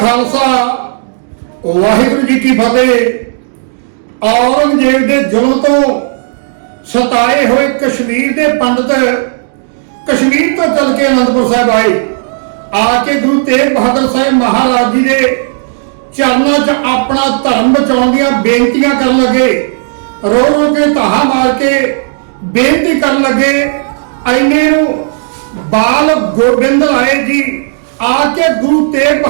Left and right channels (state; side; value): silent; left; digital silence